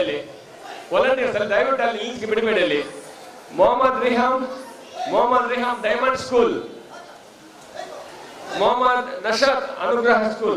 ಅಲ್ಲಿ ವಾಲಂಟಿಯರ್ಸ್ ಅಲ್ಲಿ ದಯವಿಟ್ಟು ಅಲ್ಲಿ ಈಚೆಗೆ ಬಿಡಬೇಡಿ. ಅಲ್ಲಿ Mohammad Riham diamond school, Mohammad Nashad Anugraha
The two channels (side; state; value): both; identical; correlation 1.00